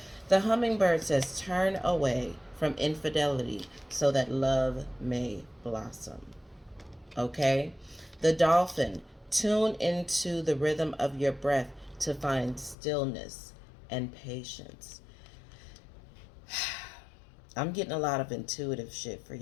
The hummingbird says, turn away from infidelity so that love may blossom. Okay? The dolphin, tune into the rhythm of your breath to find stillness and patience. I'm getting a lot of intuitive shit for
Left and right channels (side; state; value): right; drops out; at 12.8 s